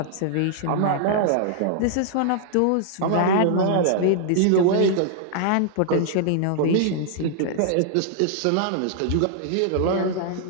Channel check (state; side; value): different; both; correlation -0.01